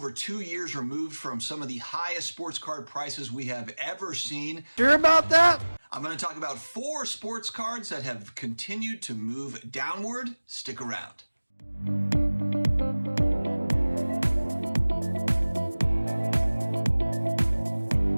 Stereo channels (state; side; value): inverted; both; correlation -1.00